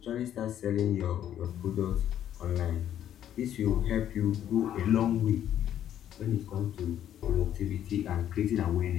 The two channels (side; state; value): right; quieter; 10.7 dB